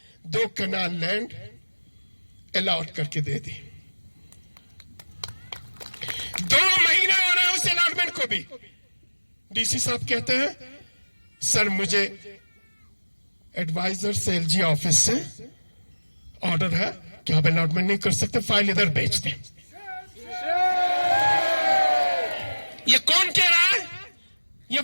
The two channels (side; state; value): both; inverted; correlation -1.00